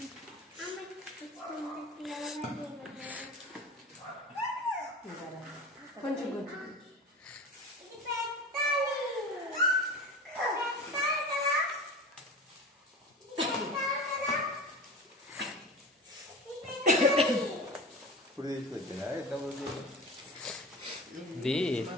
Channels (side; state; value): both; normal; correlation 0.32